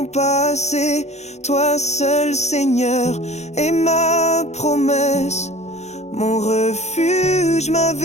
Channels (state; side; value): late; right; 0.32 ms